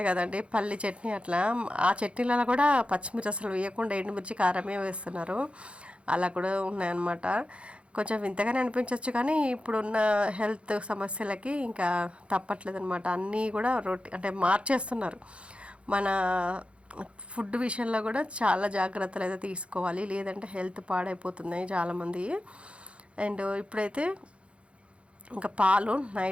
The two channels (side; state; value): left; late; 0.060 ms